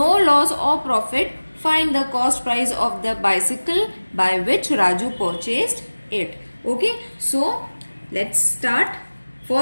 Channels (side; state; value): both; inverted; correlation -1.00